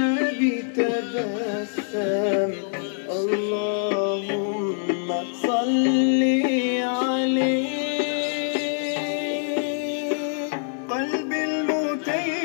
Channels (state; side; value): silent; right; digital silence